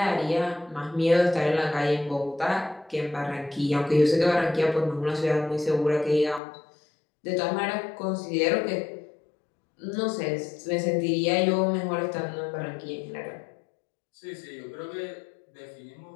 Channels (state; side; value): drops out; right; at 6.4 s